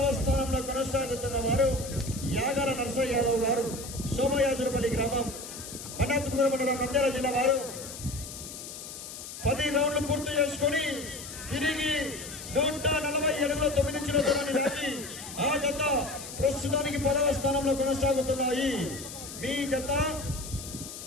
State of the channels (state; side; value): noise; left; hiss, 11 dB below the sound